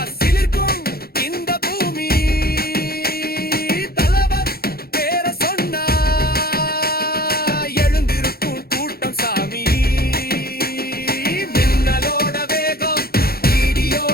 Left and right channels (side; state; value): right; late; 0.44 ms